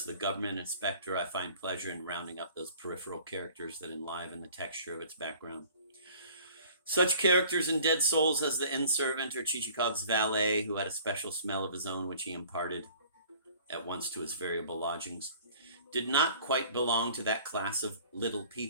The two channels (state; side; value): inverted; both; correlation -0.51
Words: The Government Inspector, I find pleasure in rounding up those peripheral characters that enliven the texture of its background. Such characters in Dead Souls as the inn-servant or Chichikov's valet, who had a special smell of his own which he imparted at once to his variable lodgings, did not quite belong to that class of little